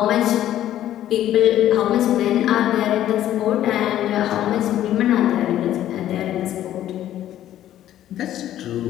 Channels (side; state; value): right; quieter; 12.3 dB